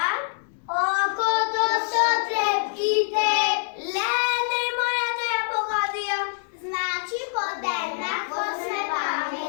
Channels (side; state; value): right; silent; digital silence